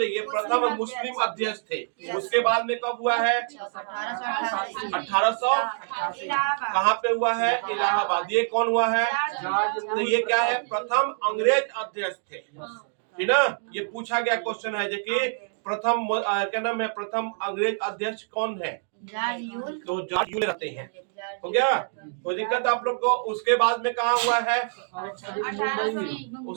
ये प्रथम मुस्लिम अध्यक्ष थे। उसके बाद में कब हुआ है? 1800। कहाँ पे हुआ है? इलाहाबाद। ये कौन हुआ है? तो ये क्या है? प्रथम अंग्रेज अध्यक्ष थे, है ना? ये पूछा गया क्वेश्चन है कि प्रथम क्या नाम है? प्रथम अंग्रेज अध्यक्ष कौन है? तो जॉर्ज यूल रहते हैं। हो गया? कोई दिक्कत आप लोग को? उसके बाद में कहाँ हुआ है?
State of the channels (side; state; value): left; silent; digital silence